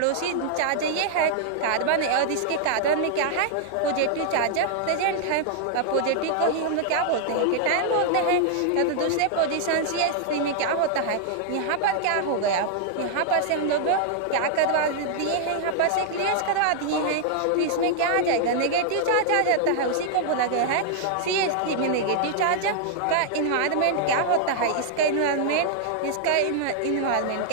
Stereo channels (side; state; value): both; different; correlation -0.01